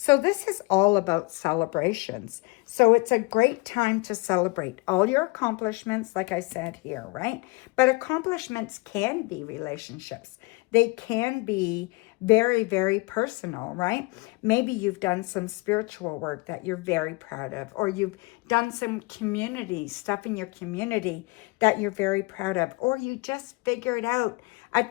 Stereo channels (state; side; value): quieter; right; 25.6 dB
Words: this is all about celebrations. So it's a great time to celebrate all your accomplishments, like I said here, right? But accomplishments can be relationships. They can be very, very personal, right? Maybe you've done some spiritual work that you're very proud of, or you've done some community stuff in your community that you're very proud of, or you just figured out a